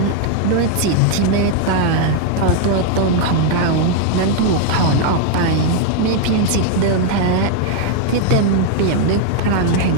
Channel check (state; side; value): different; both; correlation 0.00